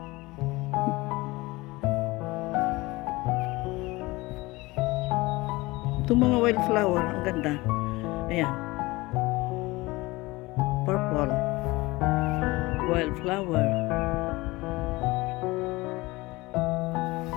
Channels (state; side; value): quieter; right; 21.6 dB